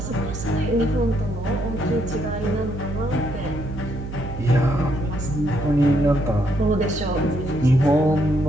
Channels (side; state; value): right; noise; hum, 9 dB below the sound